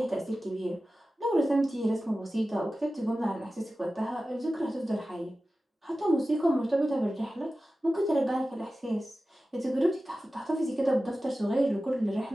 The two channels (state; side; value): normal; both; correlation 0.95